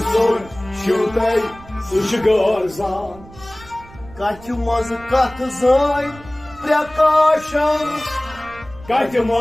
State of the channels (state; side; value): noise; right; rumble, 20 dB below the sound